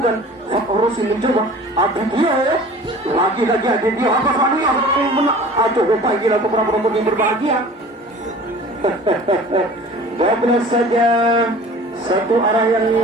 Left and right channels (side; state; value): both; normal; correlation 0.44